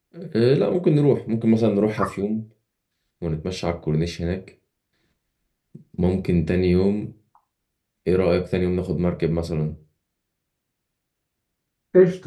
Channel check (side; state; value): both; identical; correlation 1.00